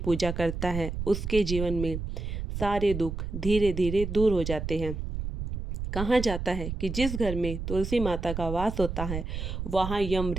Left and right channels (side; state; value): right; noise; rumble, 5 dB below the sound